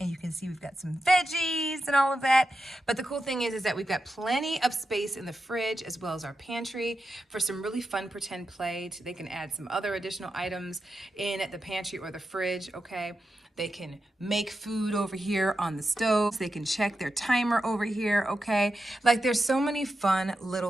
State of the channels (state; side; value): normal; both; correlation 0.89